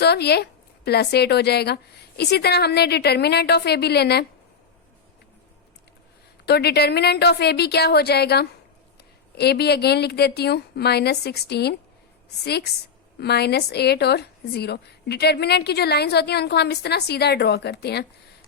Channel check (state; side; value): quieter; right; 6.0 dB